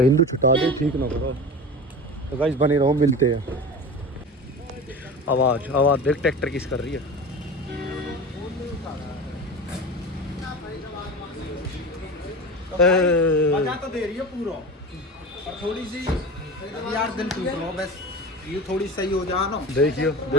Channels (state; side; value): normal; both; correlation 0.31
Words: हिंदू छुटा दे, ठीक ना करो। तो गाइस बने रहो, मिलते हैं। आवाज आवाज देख, ट्रैक्टर किस कर रही है। मजा तो दे रही है पूरा, और थोड़ी सी यार दिल टूट रहा बस, ये थोड़ी सही हो जा ना। देखियो